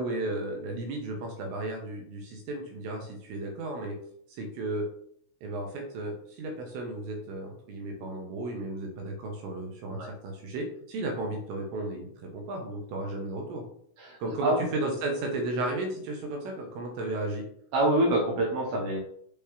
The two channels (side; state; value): left; late; 16 ms